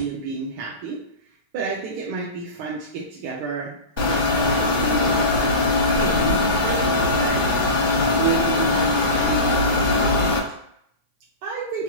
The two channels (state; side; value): late; left; 3.1 ms